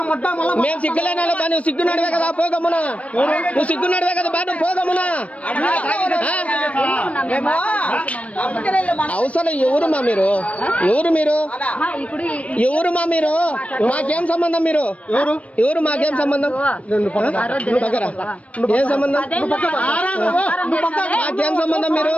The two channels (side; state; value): right; late; 0.065 ms